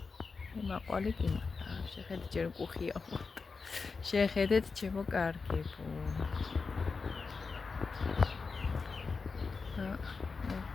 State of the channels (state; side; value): quieter; right; 4.7 dB